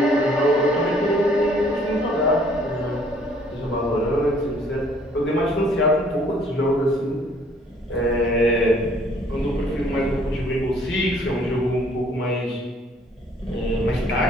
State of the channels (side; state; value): both; normal; correlation 0.60